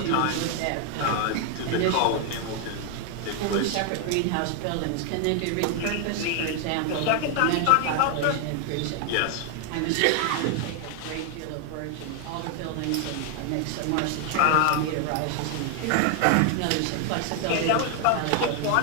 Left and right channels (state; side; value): different; both; correlation 0.00